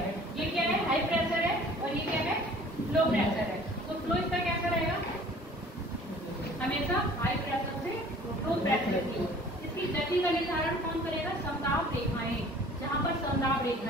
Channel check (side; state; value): both; normal; correlation 0.50